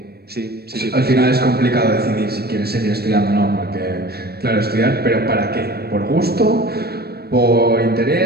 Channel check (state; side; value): late; left; 0.46 ms